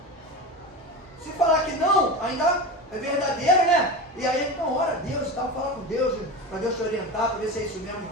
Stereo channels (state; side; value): normal; both; correlation 0.25